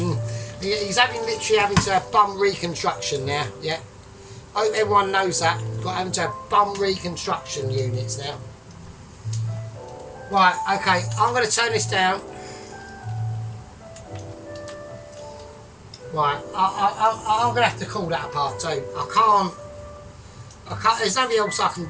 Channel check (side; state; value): both; identical; correlation 1.00